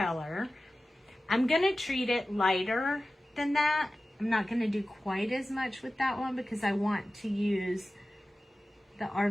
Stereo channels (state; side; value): normal; both; correlation 0.95